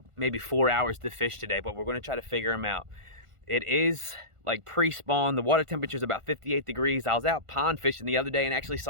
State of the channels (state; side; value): late; left; 1.5 ms